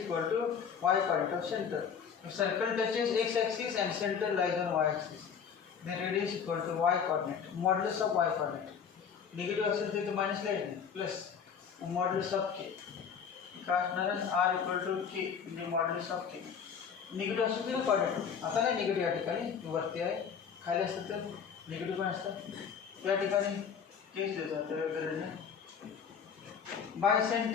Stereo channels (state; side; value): quieter; right; 7.0 dB